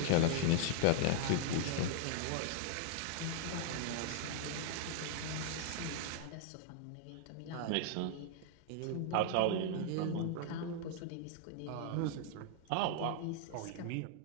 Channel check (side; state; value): both; different; correlation 0.00